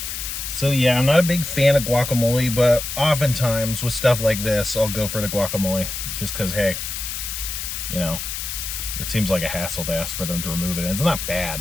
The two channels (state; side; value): noise; left; hiss, 5 dB below the sound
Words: So yeah, I'm not a big fan of guacamole, but oftentimes with stuff like this, I'll go for the guacamole just because, hey, you know, it seems like a hassle to ask for them to remove it, and it's not